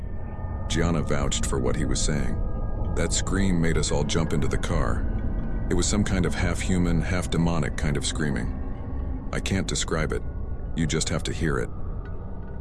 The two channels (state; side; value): identical; both; correlation 1.00